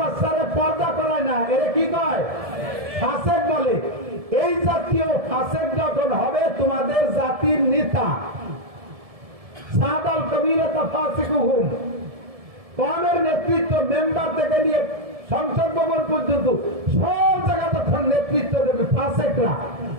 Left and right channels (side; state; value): left; late; 1.7 ms